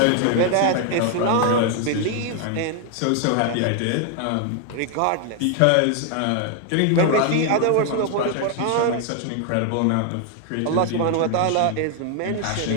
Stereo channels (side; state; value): both; different; correlation 0.00